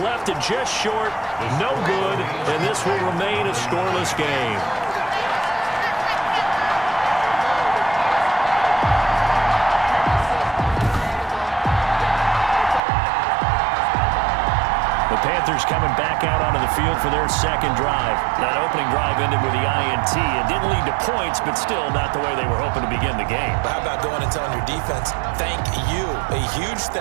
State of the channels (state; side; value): drops out; left; at 12.8 s